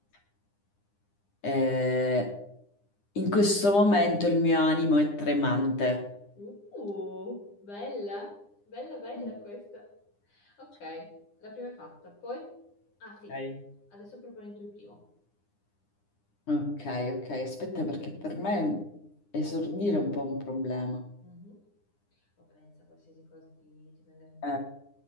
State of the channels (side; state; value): right; late; 9.9 ms